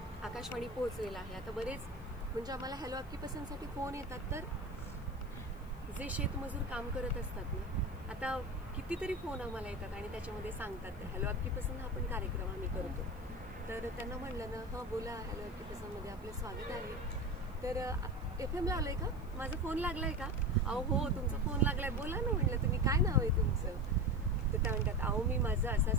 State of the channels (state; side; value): noise; left; hiss, 29 dB below the sound